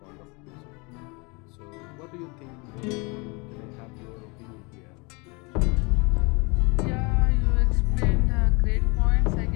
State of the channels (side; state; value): right; quieter; 28.8 dB